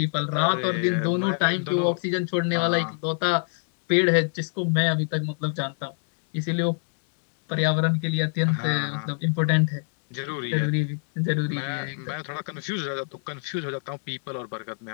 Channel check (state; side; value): silent; right; 58 dB below the other